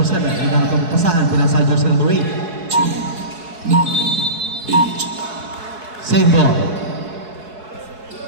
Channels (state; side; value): late; left; 4.7 ms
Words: 7. Hinahanap ang pasahan. Pinasa kay jersey number 8. 9, 8. Save ball.